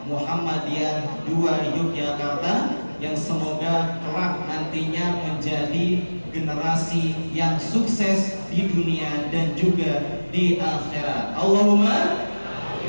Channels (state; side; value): inverted; both; correlation -1.00